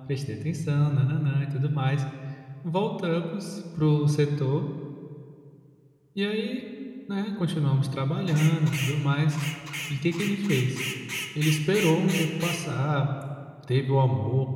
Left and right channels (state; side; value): identical; both; correlation 1.00